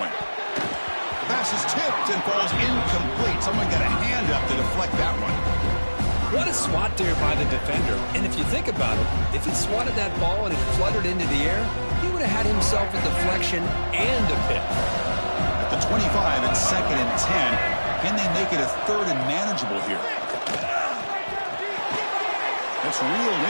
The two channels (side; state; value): both; inverted; correlation -1.00